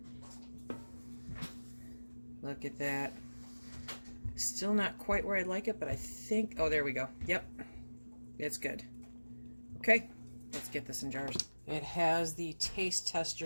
Look at that. Still not quite where I'd like it, but I think, oh, there we go. Yep, it's good. Okay, let's get this in jars. It has the taste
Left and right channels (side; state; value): both; inverted; correlation -1.00